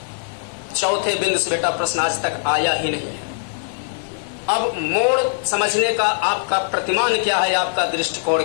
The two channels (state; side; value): silent; right; digital silence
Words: चौथे बिंदु से बेटा प्रश्न आज तक आया ही नहीं है। अब मोड़ समझने का आपका प्रतिमान क्या है, आपका दृष्टिकोण